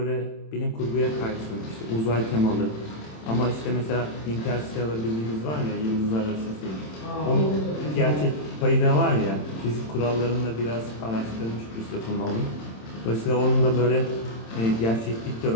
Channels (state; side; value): late; right; 27 ms